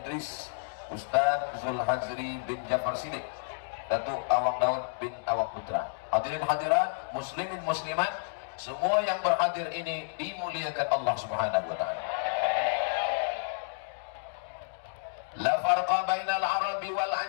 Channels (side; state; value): right; silent; digital silence